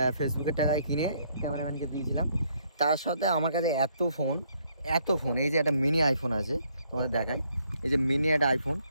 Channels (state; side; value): inverted; both; correlation -0.69